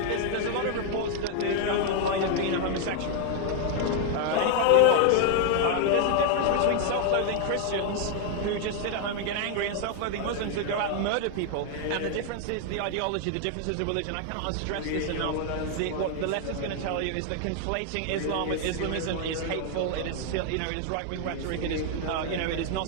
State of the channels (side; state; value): both; different; correlation 0.00